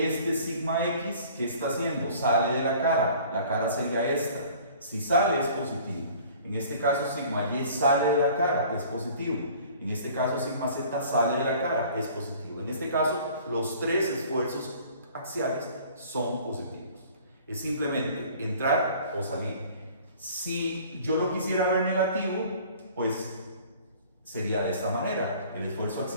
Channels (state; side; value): inverted; both; correlation -0.50